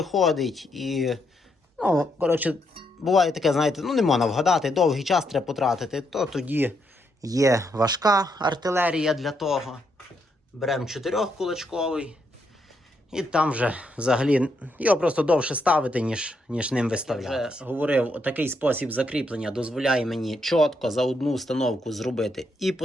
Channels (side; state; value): both; normal; correlation 0.78